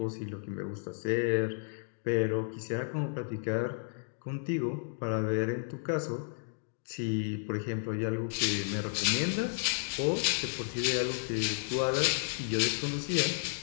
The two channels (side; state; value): right; silent; digital silence